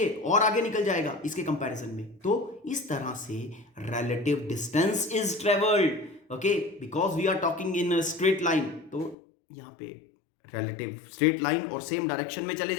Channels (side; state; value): right; drops out; at 9.2 s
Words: और आगे निकल जाएगा इसके कंपैरिजन में। तो इस तरह से relative distance is travelled, okay, because we are talking in straight line. तो यहां पे रिलेटिव स्ट्रेट लाइन और सेम डायरेक्शन में चले